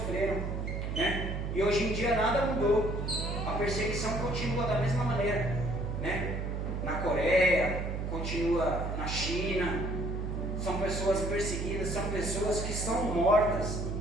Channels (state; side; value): noise; right; hum, 3 dB below the sound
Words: né? E hoje em dia nada mudou. A perseguição continua da mesma maneira, né? Na Coreia, continua na China. São pessoas perseguidas, são pessoas que estão mortas.